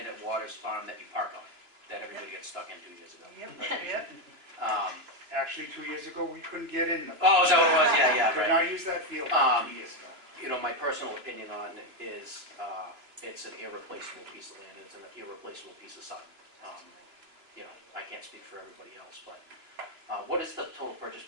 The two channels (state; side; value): late; left; 2.9 ms